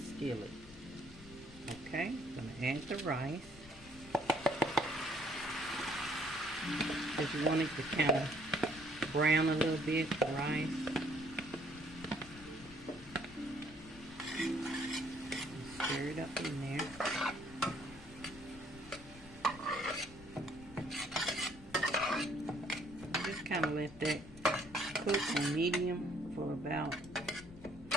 Okay. I'm going to add the rice. Because you want it to kind of brown a little bit, the rice. Stir it up in there. Just kind of let that cook on medium for about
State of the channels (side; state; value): left; noise; rumble, 19 dB below the sound